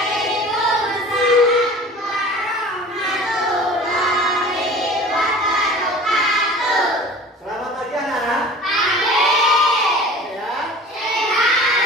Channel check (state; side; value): normal; both; correlation 0.42